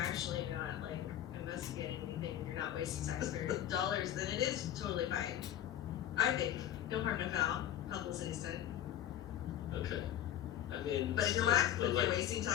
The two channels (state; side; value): quieter; right; 11.3 dB